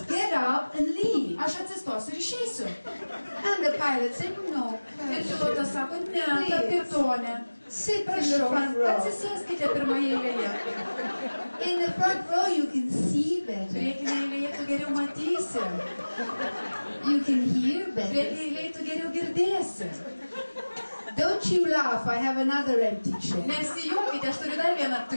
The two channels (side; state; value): both; inverted; correlation -1.00